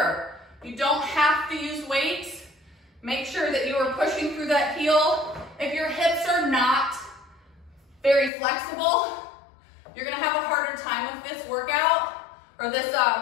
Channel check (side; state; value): right; drops out; at 8.3 s